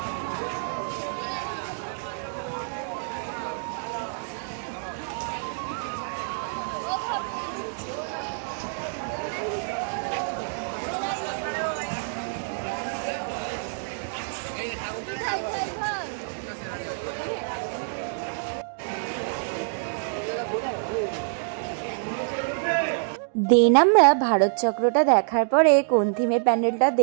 দেন আমরা ভারত চক্রটা দেখার পরে কোন থিমের প্যান্ডেলটা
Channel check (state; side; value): silent; left; digital silence